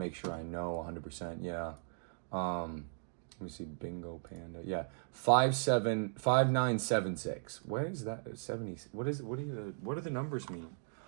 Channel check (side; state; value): left; silent; digital silence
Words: sure I know 100%. Yeah. Let me see. Bingo Panda. Yeah. 5976. What is that? 70. What do the numbers mean?